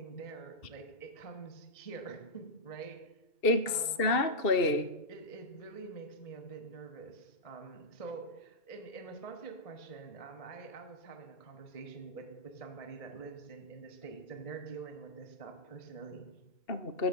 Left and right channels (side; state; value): right; late; 2.7 ms